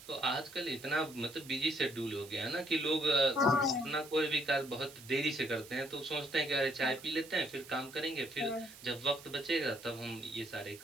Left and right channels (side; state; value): right; noise; hiss, 18 dB below the sound